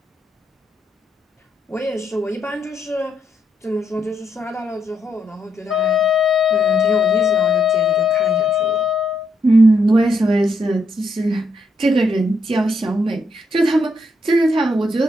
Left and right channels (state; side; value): normal; both; correlation 0.77